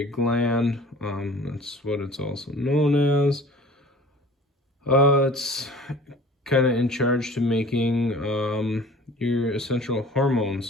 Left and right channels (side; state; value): both; normal; correlation 0.45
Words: gland. That's what it's also known as. It's kind of in charge to making your essential